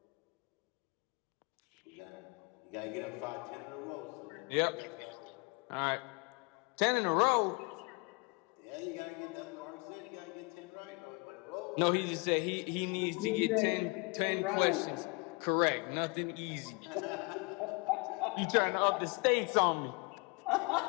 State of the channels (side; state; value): right; quieter; 28.5 dB